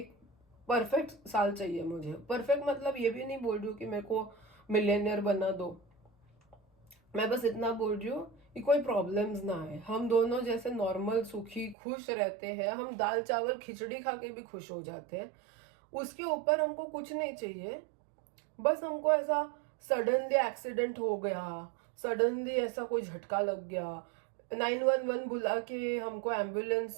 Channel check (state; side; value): drops out; left; at 11.8 s